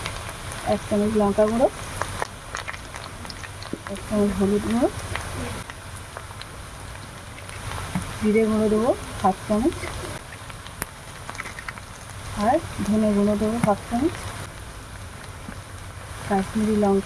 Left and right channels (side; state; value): both; identical; correlation 1.00